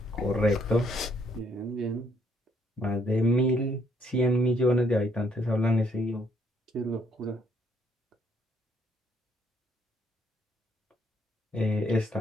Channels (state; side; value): normal; both; correlation 0.69